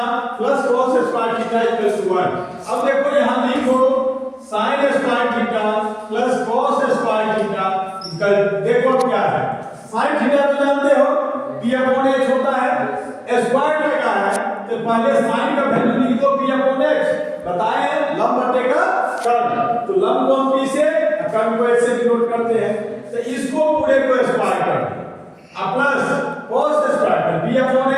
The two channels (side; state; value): both; identical; correlation 1.00